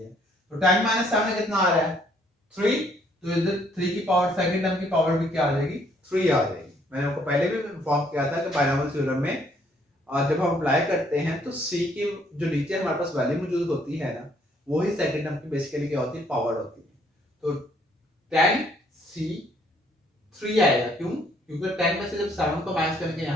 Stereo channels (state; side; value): normal; both; correlation 0.66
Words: तो 10 माइनस 7 कितना आ रहा है 3, तो इधर 3 की पावर सेकंड टर्म की पावर भी क्या आ जाएगी 3 आ जाएगी। मैंने आपको पहले भी इन्फॉर्म किया था कि बायनोमियल थ्योरम में जब हम अप्लाई करते हैं तो c की जो नीचे हमारे पास वैल्यू मौजूद होती है ना, वही सेकंड टर्म की बेसिकली क्या होती है पावर होती है। तो 10 c 3 आएगा, क्यों, क्योंकि 10 में से जब 7 को माइनस करेंगे